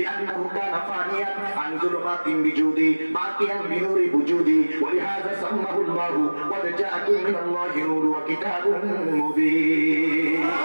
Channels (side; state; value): both; inverted; correlation -1.00